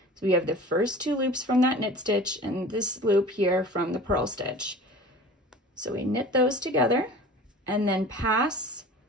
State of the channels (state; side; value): normal; both; correlation 0.40